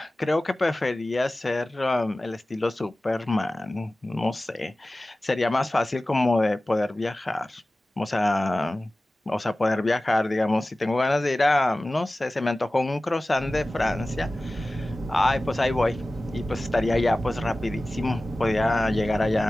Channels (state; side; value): normal; both; correlation 0.97